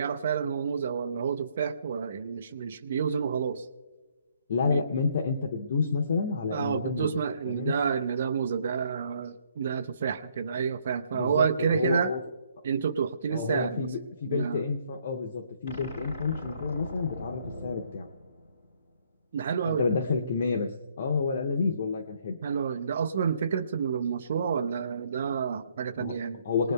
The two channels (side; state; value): both; inverted; correlation -0.67